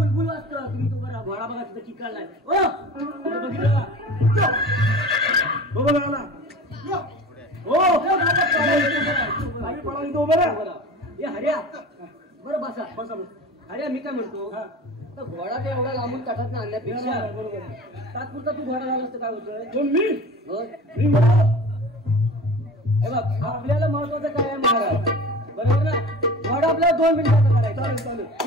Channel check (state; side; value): normal; both; correlation 0.37